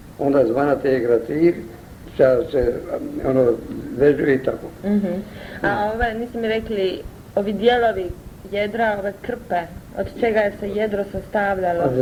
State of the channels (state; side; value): identical; both; correlation 1.00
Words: onda zvana te je grativ, što se vežu i tako. A niste mi rekli, ovi dijelovi jedra, ove krpe, od čega je se jedro sastavljalo.